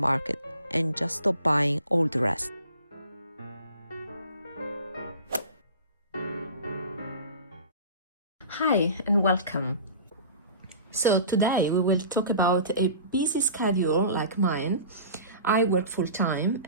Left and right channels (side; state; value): both; inverted; correlation -0.40